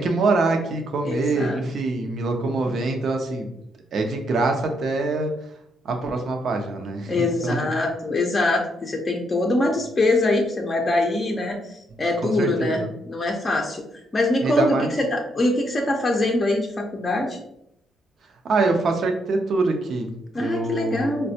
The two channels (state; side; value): normal; both; correlation 0.76